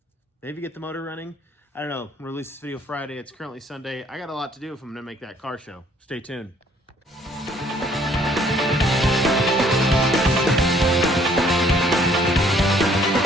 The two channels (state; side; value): normal; both; correlation 0.62